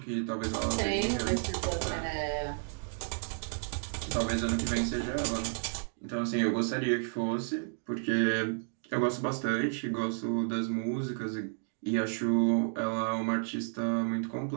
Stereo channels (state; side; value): silent; left; 56 dB below the other